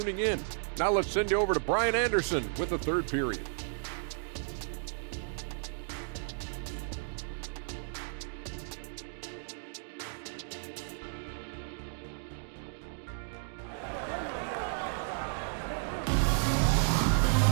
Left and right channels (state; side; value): silent; left; digital silence